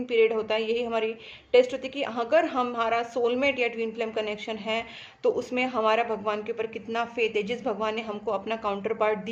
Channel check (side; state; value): both; identical; correlation 1.00